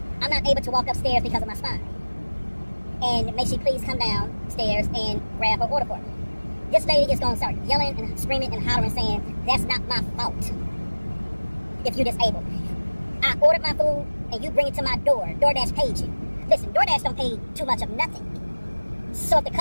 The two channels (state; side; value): inverted; both; correlation -1.00